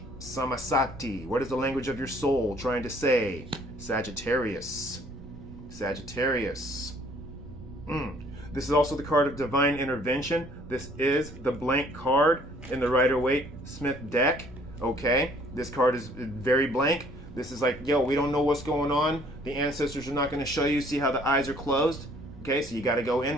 Samasati. What is the language of your soul trying to say? Sagittarius. This is also the card of divine intervention. This is the blank card in the Rider-Waite-Smith deck. Okay, this card is very blank. This is like, yo, we don't know what's going on. The ancestors are not going to show you. See how the eyes are closed? Okay, so you got to go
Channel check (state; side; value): noise; right; rumble, 17 dB below the sound